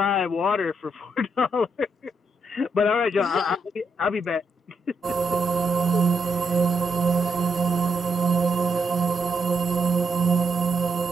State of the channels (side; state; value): both; normal; correlation 0.79